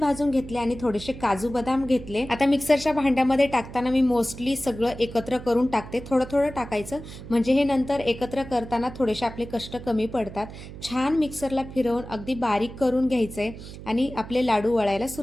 घेतले आणि थोडेसे काजू बदाम घेतले. आता मिक्सरच्या भांड्यामध्ये टाकताना मी मोस्टली सगळं एकत्र करून टाकते. थोडं थोडं टाकायचं, म्हणजे हे नंतर एकत्र करताना थोडेसे आपले कष्ट कमी पडतात. छान मिक्सरला फिरवून अगदी बारीक करून घ्यायचंय आणि आपले लाडू वळायला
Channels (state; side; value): noise; right; hum, 13 dB below the sound